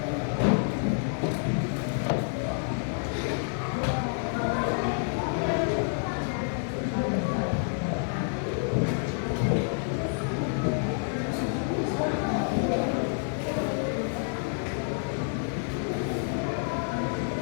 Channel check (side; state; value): right; silent; 59 dB below the other